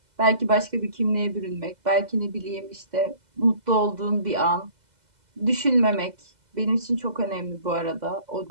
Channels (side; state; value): left; late; 2.0 ms